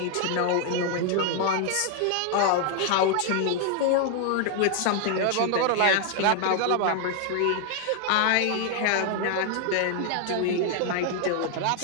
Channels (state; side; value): different; both; correlation 0.00